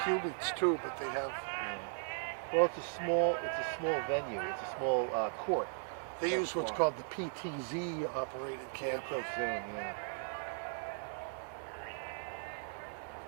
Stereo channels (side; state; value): left; silent; digital silence